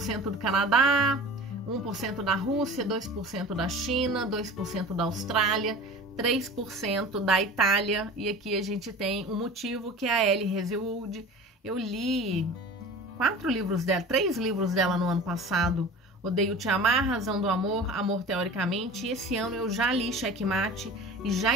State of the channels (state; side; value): normal; both; correlation 0.38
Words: do Canadá, 1% da Rússia, 2% da China, 2% da Austrália, 3% da Itália, e aqui a gente tem um motivo que é a Ellie Hazelwood. Eu li 3 livros dela no ano passado. Odeio Te Amar, Razão do Amor, Amor Teoricamente, e esse ano eu já li Checkmate e já